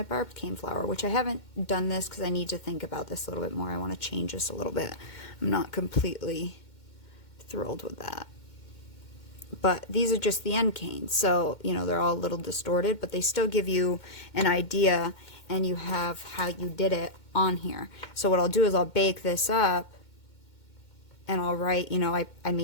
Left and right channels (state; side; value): late; right; 2.2 ms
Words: barbed cane flower, which I haven't done this because I need to think about this a little bit more. I want to change this a little bit. I'm not completely thrilled with that. But these are just the end canes, so you know they're all a little distorted, but they still give you an idea, and you have how you did it on here. So what I'll do is I'll bake this up, and I'll write, you know, I